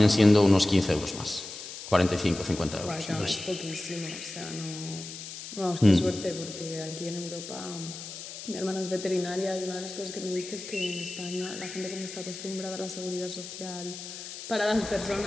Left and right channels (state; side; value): noise; left; hiss, 11 dB below the sound